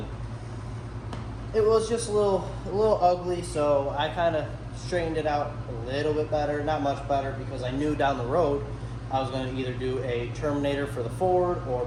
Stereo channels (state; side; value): identical; both; correlation 1.00